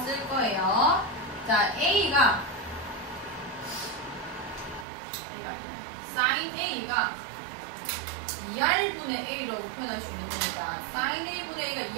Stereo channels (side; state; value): left; drops out; at 4.9 s